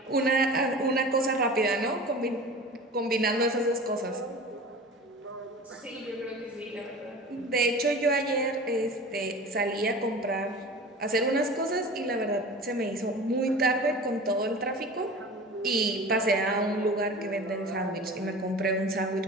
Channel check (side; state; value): both; normal; correlation 0.37